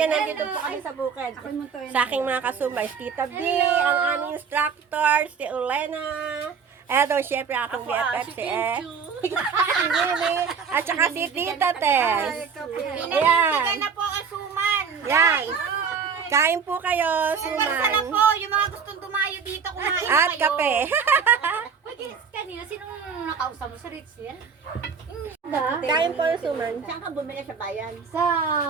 nandito po kami sa bukid. Sa aking mga kasumay, si Tita B, ang aming instructor, si Ulena. Eto, syempre akong BFF si si Mimi, at saka si Tita Tess. Ayan. na po asuman. Yan. Kain po kayo, Sana suman. po, yung mga gustong dumayo dito, kumain At kayo. kape. Pwede, kanina, sinong nakausap mo sa Ritzel? Kain po yung suman. Saan ka bumili sa bayan? Sa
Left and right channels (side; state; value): left; quieter; 6.1 dB